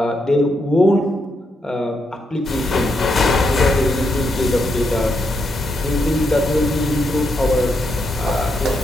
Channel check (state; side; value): normal; both; correlation 0.80